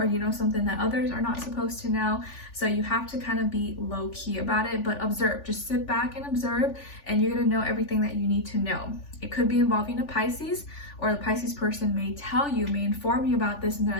you know something that others are not supposed to know. So you have to kind of be low key about it, but observe. Just sit back and observe, and you're going to know everything that you need to know. It could be involving a Pisces, or the Pisces person may tell you, may inform you about this, and they're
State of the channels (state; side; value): late; right; 3.4 ms